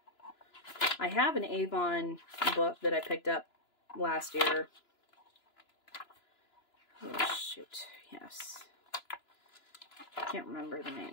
I have an Avon book that I picked up last year. Oh, shoot. Yes. I can't remember the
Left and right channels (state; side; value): late; right; 2.9 ms